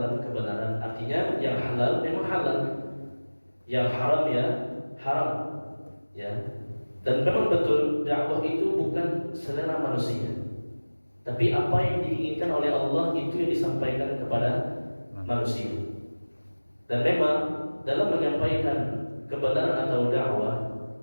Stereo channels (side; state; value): both; inverted; correlation -1.00